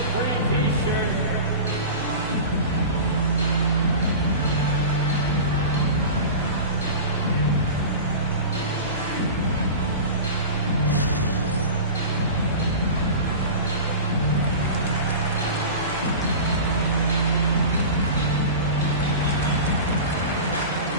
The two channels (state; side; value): inverted; both; correlation -0.33